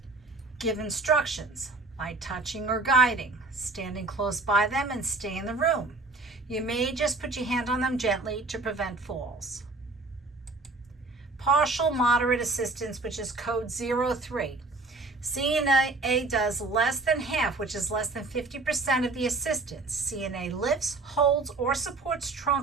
Give instructions by touching or guiding, standing close by them and stay in the room. You may just put your hand on them gently to prevent falls. Partial moderate assistance, which is code 03. CNA does less than half, which is less than 50% of the assistance. CNA lifts, holds, or supports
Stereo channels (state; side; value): quieter; left; 3.4 dB